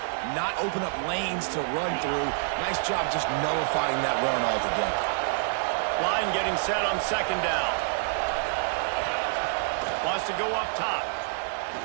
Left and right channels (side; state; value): left; silent; digital silence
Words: not open up lanes to run through. Nice job just nullifying that run altogether. Line getting set on 2nd down. Wants to go up top.